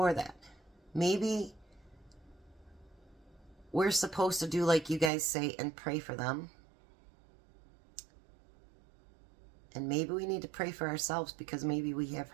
that. Maybe we're supposed to do like you guys say and pray for them. And maybe we need to pray for ourselves, because maybe we have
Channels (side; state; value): left; drops out; at 5.1 s